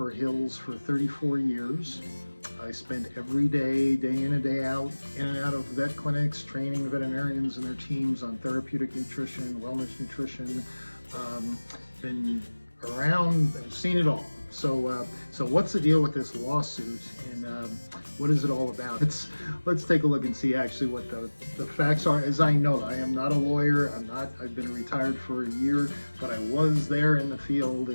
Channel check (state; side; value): inverted; both; correlation -1.00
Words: Hill's for 34 years. I spent every day, day in and day out, in and out of vet clinics, training veterinarians and their teams on therapeutic nutrition, wellness nutrition. Um, been around, I've seen it all. So what's the deal with this lawsuit, and what is it all about? Let's take a look and see actually what the facts are. As I know, I am not a lawyer. I've been retired for a year, but I was there in the field,